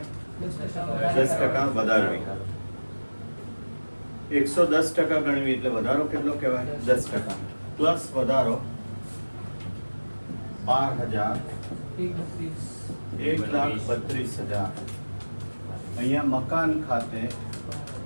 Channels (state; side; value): inverted; both; correlation -1.00